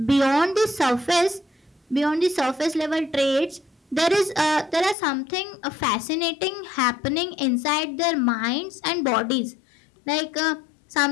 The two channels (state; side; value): drops out; right; at 5.0 s